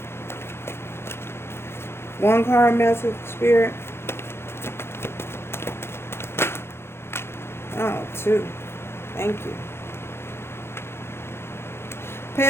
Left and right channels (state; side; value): late; right; 0.12 ms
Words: One card message, Spirit. Oh, two. Thank you.